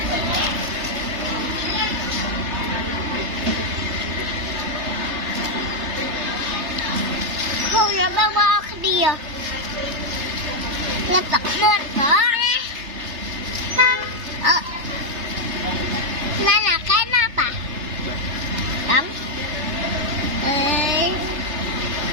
không là bà ở kia là tập lên đó nên là cái nắp à? Đúng. Ê.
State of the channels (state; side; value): late; left; 3.3 ms